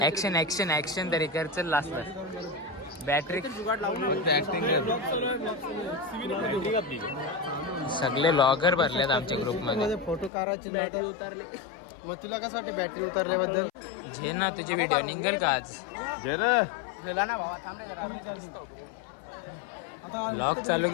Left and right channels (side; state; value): right; drops out; at 10.3 s